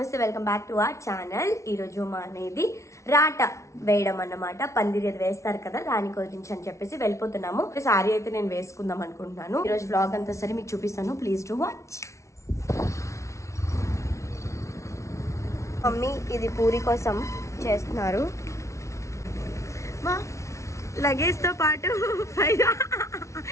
welcome back to our channel. ఈరోజు మా అనేది రాట వేయడం అన్నమాట. పందిరి అది వేస్తారు కదా, దాని గురించి అని చెప్పేసి వెళ్ళిపోతున్నాము. సారీ అయితే నేను వేసుకుందాం అనుకుంటున్నాను. ఈరోజు వ్లాగ్ అంతా సరే మీకు చూపిస్తాను, ప్లీజ్ టు వాచ్. మమ్మీ ఇది పూరి కోసం చేస్తున్నారు. మా లగేజ్ తో పాటు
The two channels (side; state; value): right; late; 0.14 ms